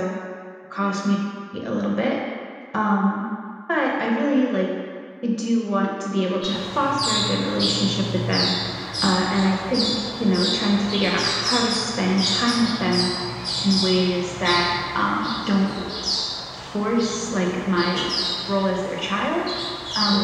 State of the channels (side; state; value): both; identical; correlation 1.00